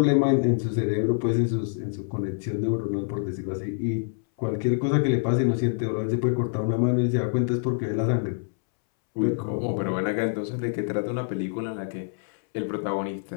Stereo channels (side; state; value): right; silent; 61 dB below the other